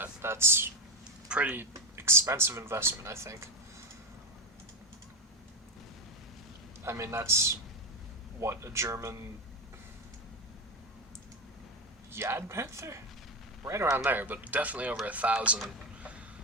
That's pretty expensive investment, I think. I mean, that's what, a German Yad Panther? Right around there, but definitely over 1,000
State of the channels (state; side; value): normal; both; correlation 0.13